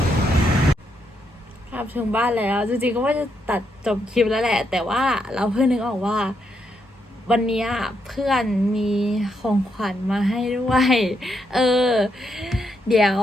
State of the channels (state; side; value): normal; both; correlation 0.79